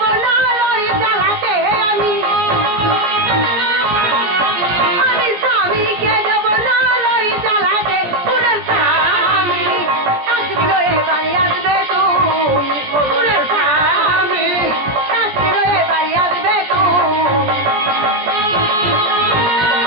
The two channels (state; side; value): late; left; 17 ms